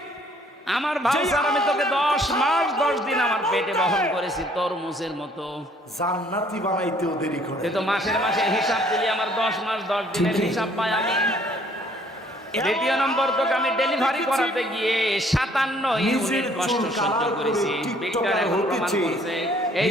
আমার ভাউচার আমি তোকে 10 মাস 10 দিন আমার পেটে বহন করেছি তরমুজের মতো। জান্নাতি বানাইতেও দেরি করে। তুই তো মাসের মাসে হিসাব দিলি, আমার 10 মাস 10 দিনের হিসাব পাই আমি। দ্বিতীয় নম্বর, তোকে আমি ডেলিভারি করাতে গিয়ে 57 ইউনিট কষ্ট সহ্য করেছি। বিজ্ঞান এখন প্রমাণ করছে এই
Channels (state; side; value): normal; both; correlation 0.61